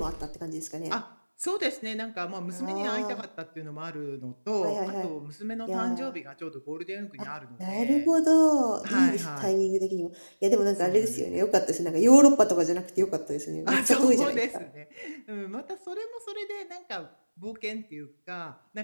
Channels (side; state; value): both; inverted; correlation -1.00